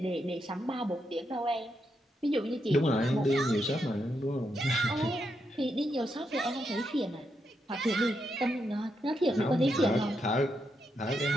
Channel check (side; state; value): both; normal; correlation 0.82